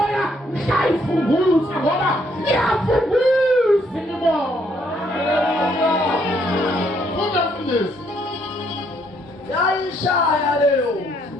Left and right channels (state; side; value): normal; both; correlation 0.70